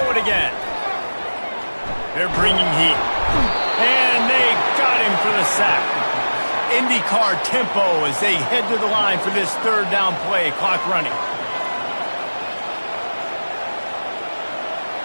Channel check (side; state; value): both; inverted; correlation -1.00